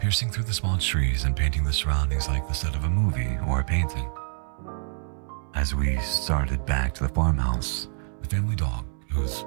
through the small trees and painting the surroundings like the set of a movie or a painting. As we started back to the farmhouse, the family dog, whose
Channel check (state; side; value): silent; left; 61 dB below the other